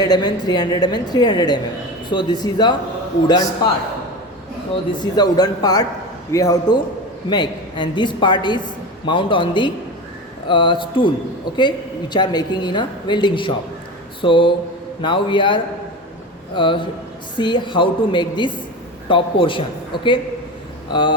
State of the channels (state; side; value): normal; both; correlation 0.27